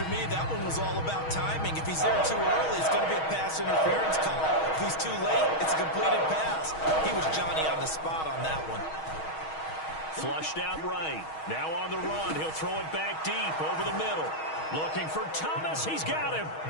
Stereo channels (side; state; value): right; late; 6.3 ms